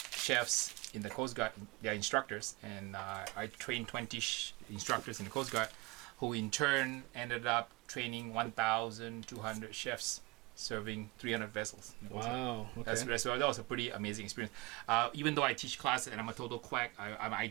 chefs in the Coast Guard. They're instructors, and I trained 20 instructors in the Coast Guard, who in turn ended up training 1,200 chefs, serving 300 vessels. Wow. Okay. That was a pretty amazing experience. Even though I teach classes and I'm a total quack, I'm an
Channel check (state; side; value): quieter; left; 24.0 dB